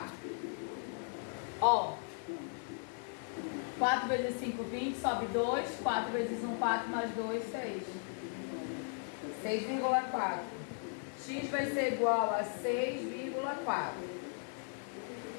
Ó. 4 vezes 5, 20. Sobe 2. 4 vezes 1, 4. Mais 2, 6. 6,4. X vai ser igual a 6,4.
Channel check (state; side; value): silent; right; 53 dB below the other